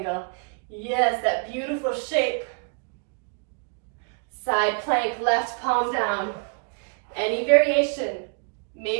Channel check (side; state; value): left; quieter; 39.9 dB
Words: Yes, that beautiful shape. Side plank, left palm down. Any variation.